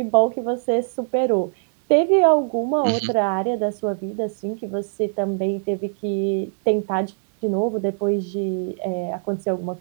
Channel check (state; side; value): silent; left; digital silence